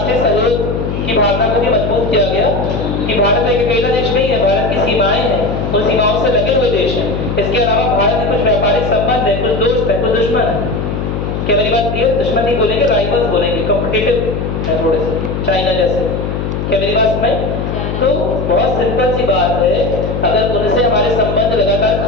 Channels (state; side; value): noise; left; hum, 3 dB below the sound